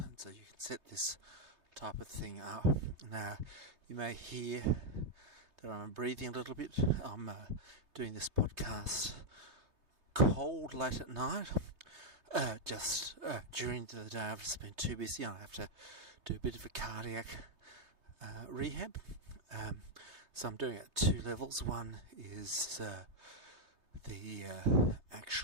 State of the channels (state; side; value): late; left; 3.2 ms